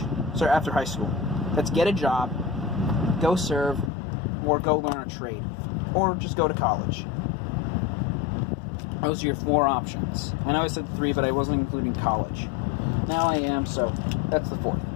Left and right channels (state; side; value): drops out; right; at 3.9 s